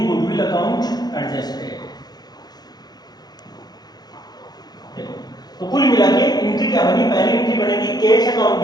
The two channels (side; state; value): right; late; 0.19 ms